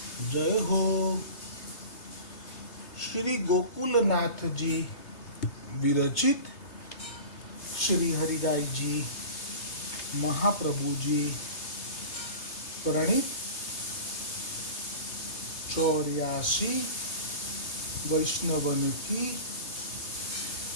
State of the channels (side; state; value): right; late; 3.3 ms